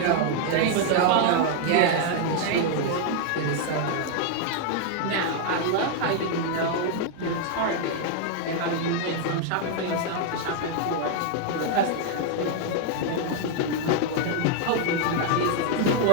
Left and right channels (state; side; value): different; both; correlation 0.00